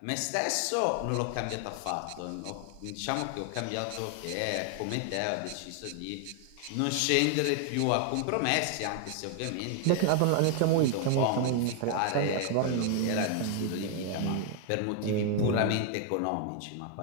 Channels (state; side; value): different; both; correlation 0.00